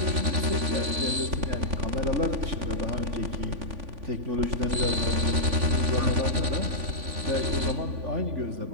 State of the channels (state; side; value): late; left; 3.5 ms